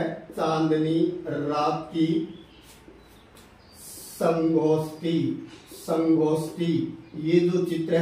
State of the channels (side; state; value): both; identical; correlation 1.00